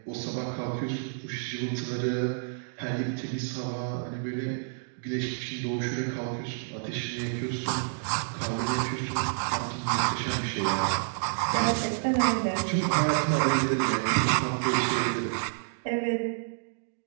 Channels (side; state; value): left; silent; digital silence